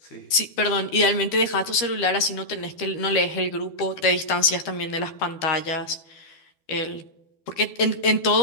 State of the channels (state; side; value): late; right; 12 ms